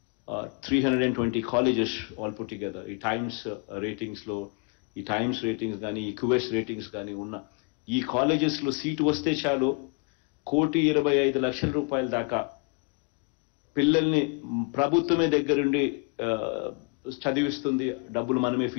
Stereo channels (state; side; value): quieter; right; 33.6 dB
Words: 320 colleges all put together ఈ టైమ్స్ రేటింగ్స్లో, ఈ టైమ్స్ రేటింగ్స్ కానీ ఈ క్యూఎస్ రేటింగ్స్ కానీ ఉన్న ఈ కాలేజెస్లో సీటు వస్తే చాలు 1,25,00,000 రూపాయల దాకా పిల్లల్ని ప్రభుత్వమే దగ్గరుండి చదివిస్తుంది, డబ్బులు మనమే